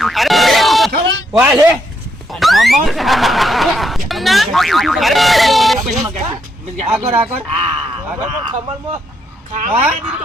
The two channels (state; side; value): normal; both; correlation 0.77